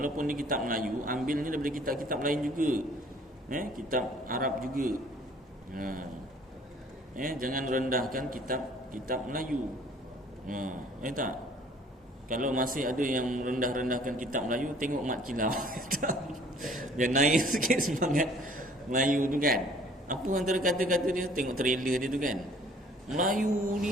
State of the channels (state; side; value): normal; both; correlation 0.55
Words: dia kitab Melayu, ambilnya daripada kitab-kitab lain juga. Kitab Arab juga. Jangan rendahkan kitab Melayu. Tak? Kalau masih ada yang rendah-rendahkan kitab Melayu, tengok Mat Kilau. Dia naik sikit semangat Melayu tu kan. Apa antara kata-kata dia? Tengok trailer dia tu kan. Melayu